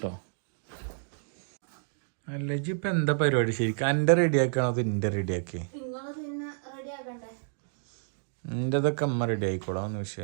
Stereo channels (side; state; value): left; silent; digital silence